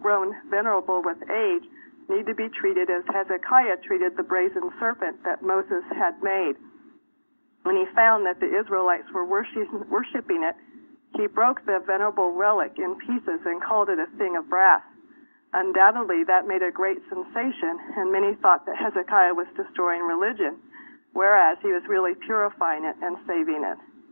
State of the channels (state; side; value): inverted; both; correlation -1.00